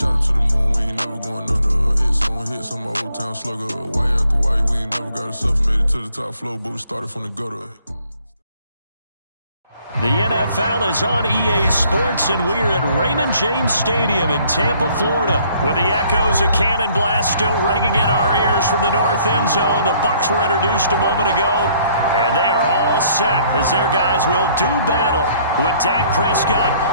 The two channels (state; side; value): inverted; both; correlation -0.63